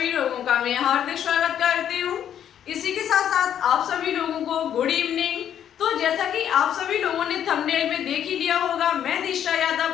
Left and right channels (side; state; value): right; quieter; 9.8 dB